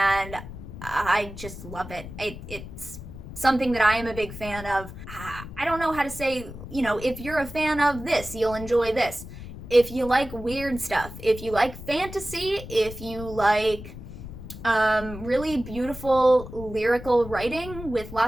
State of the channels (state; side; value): noise; left; rumble, 12 dB below the sound